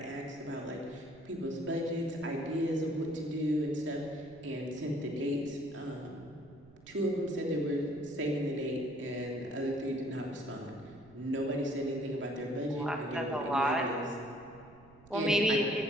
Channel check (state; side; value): noise; right; rumble, 24 dB below the sound